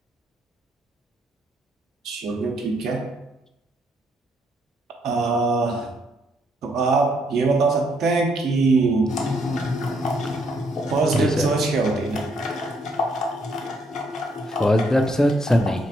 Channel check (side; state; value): both; normal; correlation 0.72